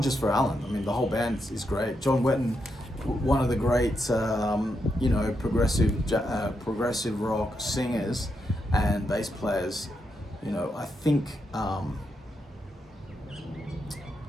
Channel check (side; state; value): both; normal; correlation 0.83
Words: just for Allan. I mean, the whole band is great. John Wetton, one of the great you know, progressive rock singers and bass players. You know, I think